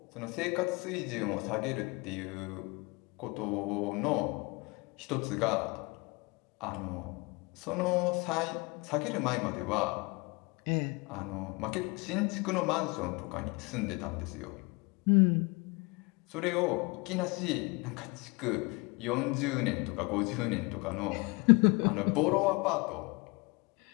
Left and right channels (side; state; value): right; quieter; 27.1 dB